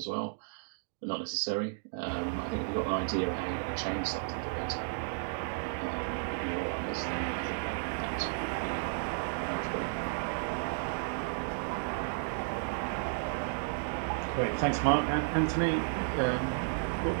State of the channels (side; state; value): left; silent; digital silence